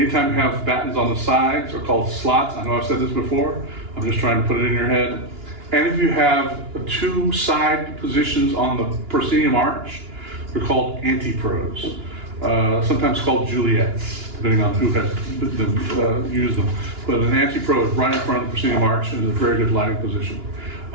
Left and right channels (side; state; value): left; late; 2.9 ms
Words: you have battens on the sides, are called slots. I know I've said this before. I'm just trying to put it in your head. And if you have 2 side positions on the proscenium arch, they're called antipros. Sometimes called Juliets, depending on who has used them. But an antipro is right in front of the proscenium arch, and is a very good lighting position.